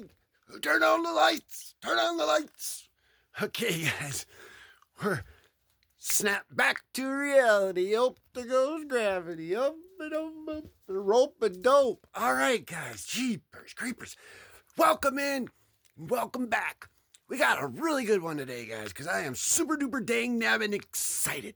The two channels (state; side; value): identical; both; correlation 1.00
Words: Turn on the lights. Okay, guys. We're snap back to reality. Up there goes gravity. Up and up, the rope and dope. All right, guys. Jeepers creepers. Welcome in. Welcome back. We got a really good one today, guys, because I am super duper dang nabbing excited.